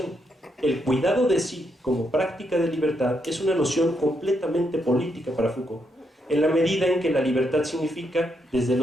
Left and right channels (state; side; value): normal; both; correlation 0.79